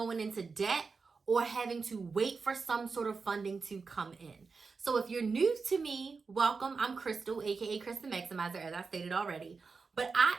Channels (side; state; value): left; quieter; 4.7 dB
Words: into debt or having to wait for some sort of funding to come in. So if you're new to me, welcome. I'm Crystal, aka Chris the Maximizer, as I stated already. But I